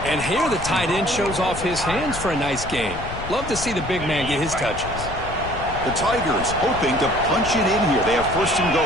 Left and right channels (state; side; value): noise; left; rumble, 10 dB below the sound